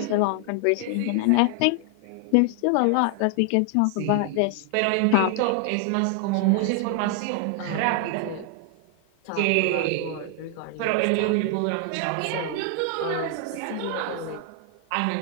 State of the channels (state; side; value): different; both; correlation 0.00